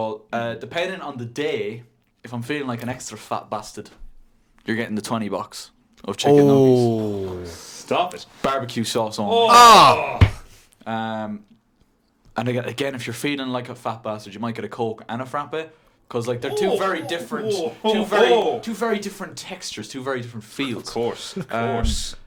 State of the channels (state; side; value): identical; both; correlation 1.00